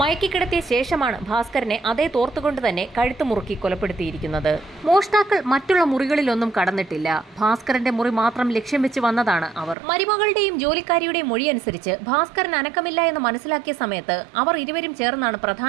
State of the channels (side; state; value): left; drops out; at 9.8 s